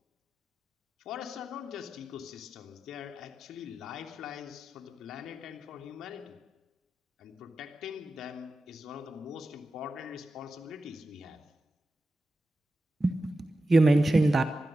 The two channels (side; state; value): both; normal; correlation 0.92